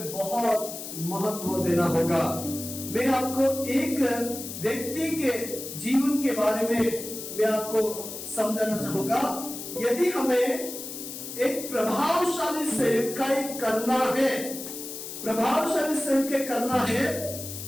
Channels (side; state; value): left; noise; hiss, 9 dB below the sound